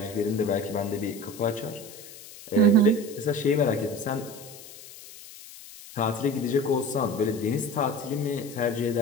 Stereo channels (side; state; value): left; noise; hiss, 17 dB below the sound